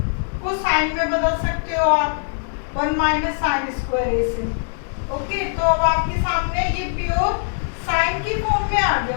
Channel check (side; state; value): right; silent; digital silence